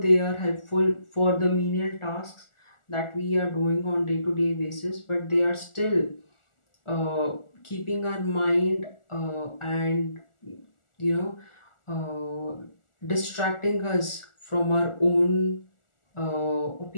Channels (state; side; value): late; right; 1.4 ms